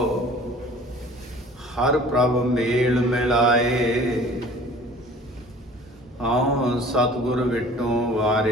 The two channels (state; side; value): normal; both; correlation 0.47